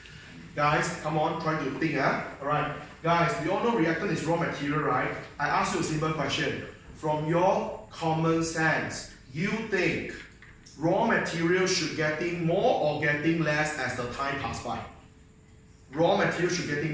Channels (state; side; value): identical; both; correlation 1.00